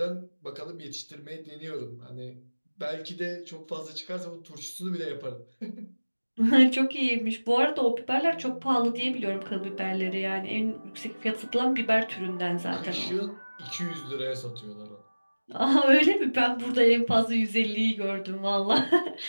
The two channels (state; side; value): inverted; both; correlation -1.00